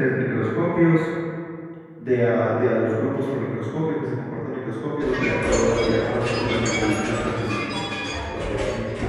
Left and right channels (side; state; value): both; identical; correlation 1.00